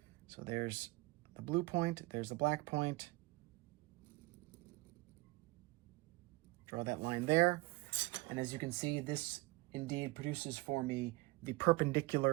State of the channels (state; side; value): quieter; left; 22.8 dB